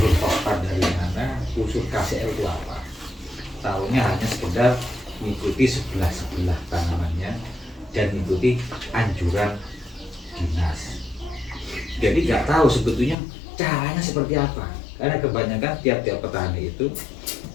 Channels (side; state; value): right; drops out; at 13.2 s